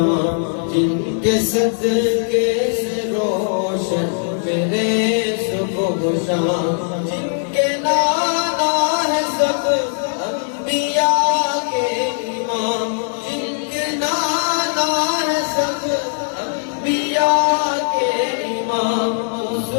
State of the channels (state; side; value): silent; right; digital silence